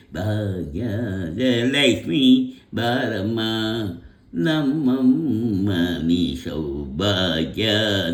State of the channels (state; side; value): identical; both; correlation 1.00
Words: ಭಾಗ್ಯದ ಲಕ್ಷ್ಮೀ ಬಾರಮ್ಮ ನಮ್ಮಮ್ಮ ನೀ